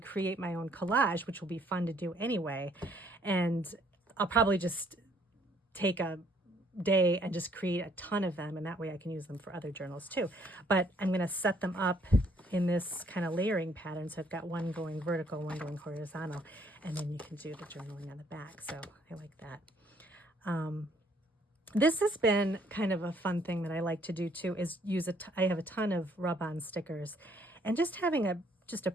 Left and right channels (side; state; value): both; normal; correlation 0.65